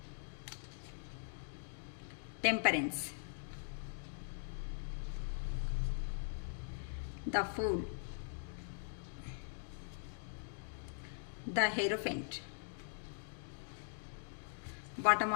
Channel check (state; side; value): silent; right; digital silence